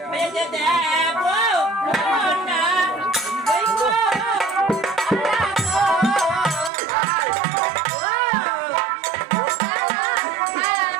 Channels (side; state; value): left; drops out; at 6.7 s